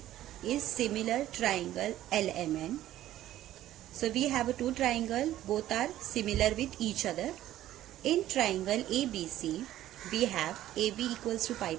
is similar triangle LMN. So we have a two triangle, both are similar with each other. In triangle ABC, we have AB equals to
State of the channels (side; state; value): left; quieter; 13.5 dB